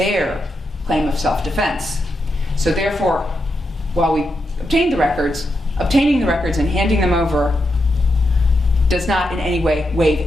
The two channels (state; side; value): normal; both; correlation 0.85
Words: claim of self-defense. So therefore, while we obtained the records, obtaining the records and handing them over does not in any way waive